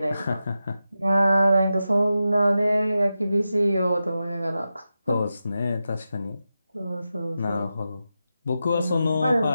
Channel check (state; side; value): inverted; both; correlation -0.90